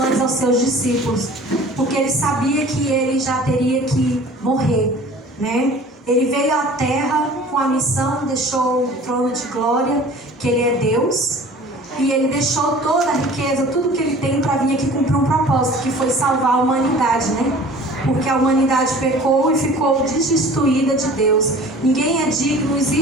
aos seus discípulos, porque ele sabia que ele já teria que morrer, né? Ele veio à terra com a missão, deixou o trono de glória, que ele é Deus, e ele deixou toda a riqueza, tudo que ele tem para vir aqui cumprir um propósito, que foi salvar a humanidade, né? Porque a humanidade pecou e ficou destituída de Deus. Ninguém é digno, não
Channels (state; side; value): normal; both; correlation 0.45